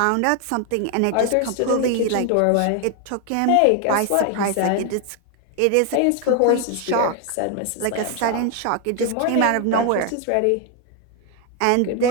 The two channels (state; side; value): different; both; correlation 0.01